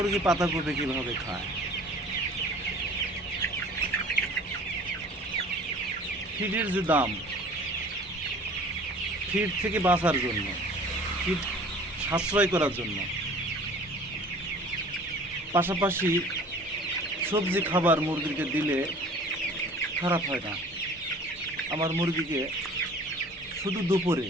পাতাকপি কিভাবে খায়। ফিডের যে দাম, ফিড থেকে বাঁচার জন্য, ফিড সাশ্রয় করার জন্য, পাশাপাশি সবজি খাবার মুরগিকে দিলে খারাপ হয় না। আমার মুরগিকে শুধু দুপুরে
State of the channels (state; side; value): normal; both; correlation 0.47